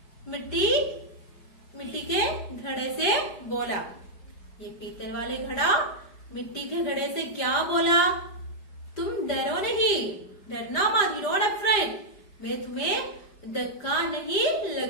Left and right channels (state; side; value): late; right; 5.0 ms